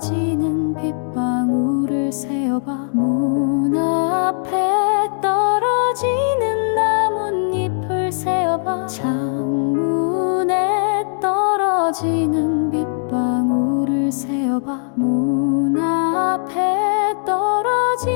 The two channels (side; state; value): right; silent; digital silence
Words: 빗방울을 세어봐. 문 앞에 떨어지는 나뭇잎을 세어봐. 창문에 떨어지는 빗방울을 세어봐. 문 앞에